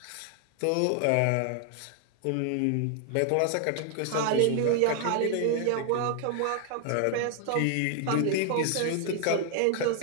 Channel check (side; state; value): both; different; correlation 0.00